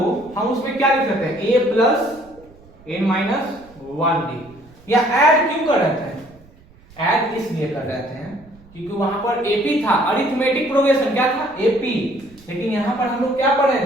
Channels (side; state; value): right; noise; rumble, 26 dB below the sound